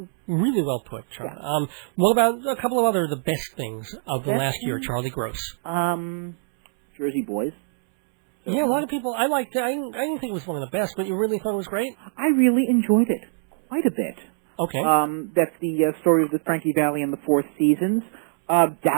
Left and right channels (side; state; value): left; silent; 63 dB below the other